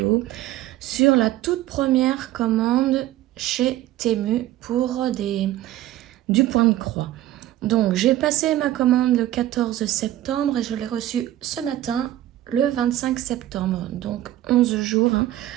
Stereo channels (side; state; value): left; quieter; 14.2 dB